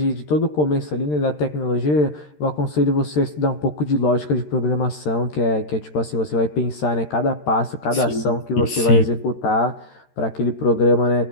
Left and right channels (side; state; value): right; late; 13 ms